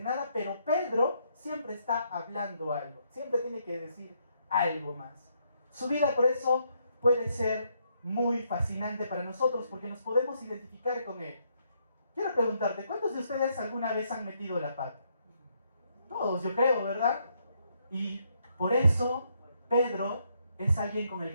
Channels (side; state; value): both; inverted; correlation -0.74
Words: nada, pero Pedro siempre está hablando algo, siempre tiene que decir algo más. Su vida por eso puede ser muy fascinante para nosotros, porque nos podemos identificar con él. Quiero preguntarte, ¿cuántos de ustedes alguna vez han metido la pata? Todos, yo creo, ¿verdad? Y por eso Pedro es alguien con el